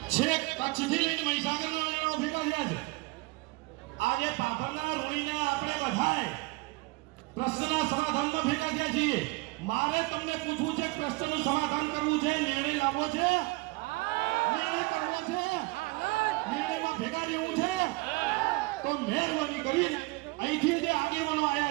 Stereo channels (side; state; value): left; quieter; 24.4 dB